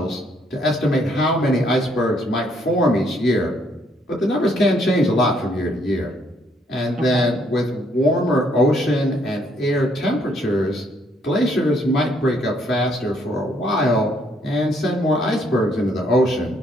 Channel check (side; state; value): both; normal; correlation 0.69